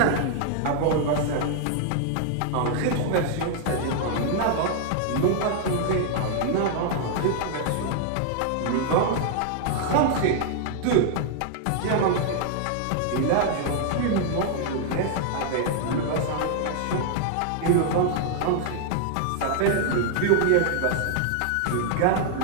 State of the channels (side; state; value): both; different; correlation -0.01